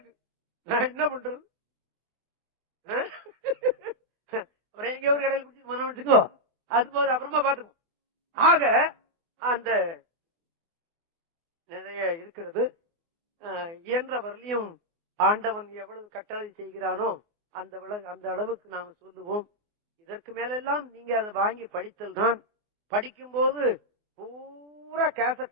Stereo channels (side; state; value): left; late; 24 ms